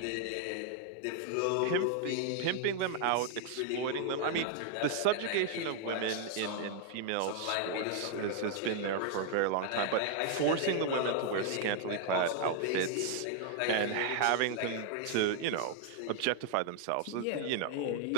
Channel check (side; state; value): both; different; correlation 0.00